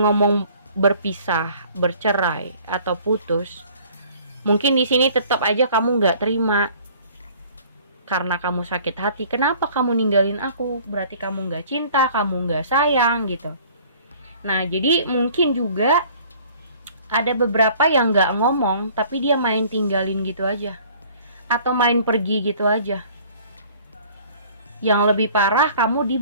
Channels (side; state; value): both; inverted; correlation -0.52